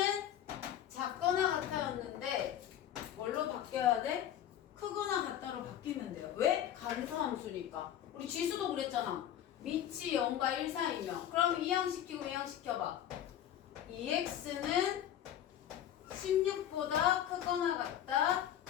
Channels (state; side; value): quieter; right; 10.9 dB